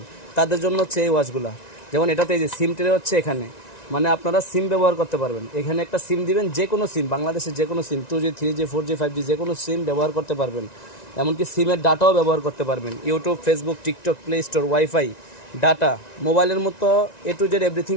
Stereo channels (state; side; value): late; right; 1.9 ms